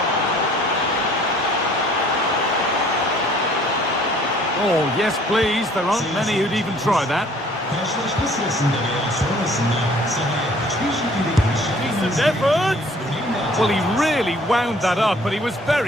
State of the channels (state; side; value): normal; both; correlation 0.56